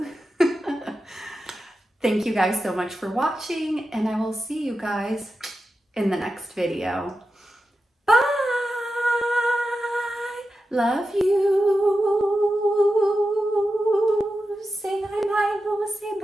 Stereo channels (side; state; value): both; normal; correlation 0.91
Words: Thank you guys so much for watching, and I will see you guys in the next video. Bye! Love you. Say bye, bye, say